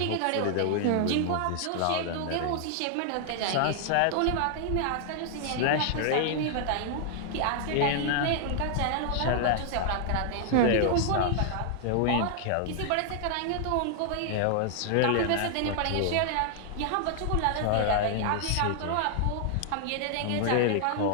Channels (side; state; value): both; different; correlation 0.00